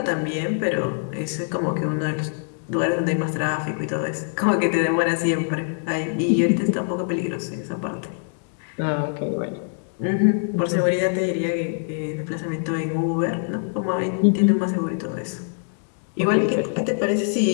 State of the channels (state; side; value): silent; right; digital silence